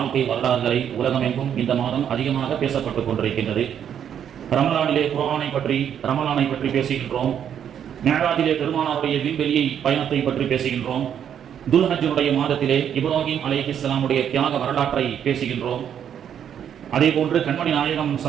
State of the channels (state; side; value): quieter; left; 9.0 dB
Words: வரலாறுகளை உலகமெங்கும் இந்த மாதம் அதிகமாக பேசப்பட்டுக் கொண்டிருக்கின்றது. ரமலானிலே குர்ஆனை பற்றி ரமலானை பற்றி பேசுகின்றோம். மிஅராஜிலே பெருமானாருடைய விண்வெளியை பயணத்தை பற்றி பேசுகின்றோம். துல்ஹஜ்ஜுடைய மாதத்திலே இப்ராஹிம் அலைஹிஸ்ஸலாமுடைய தியாக வரலாற்றை பேசுகின்றோம். அதே போன்று கண்மணி நாயகம்